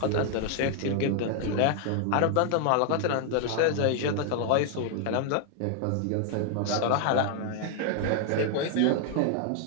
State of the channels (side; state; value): both; different; correlation 0.00